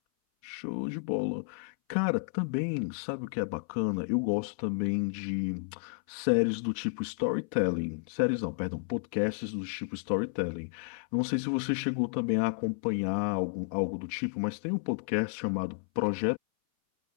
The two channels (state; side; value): silent; right; 57 dB below the other